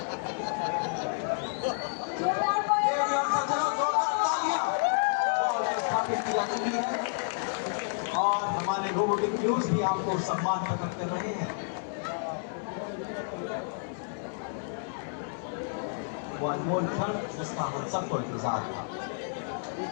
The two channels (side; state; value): right; silent; 58 dB below the other